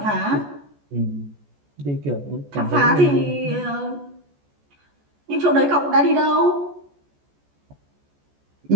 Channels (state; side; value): late; left; 14 ms